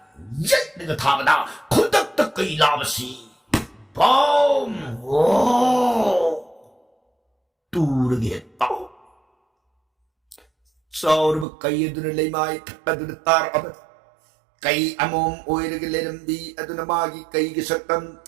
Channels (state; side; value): drops out; left; at 11.5 s